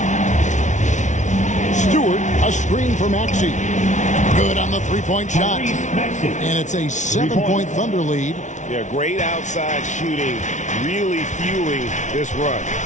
Stewart, a screen for Maxey. Good on the three-point shot. And it's a 7-point Thunder lead. Yeah, great outside shooting, really fueling this run.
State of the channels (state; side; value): late; right; 0.36 ms